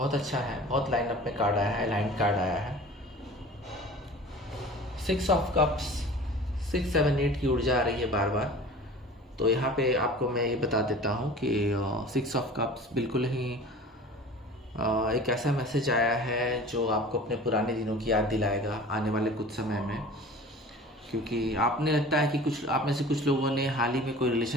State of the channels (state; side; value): normal; both; correlation 0.41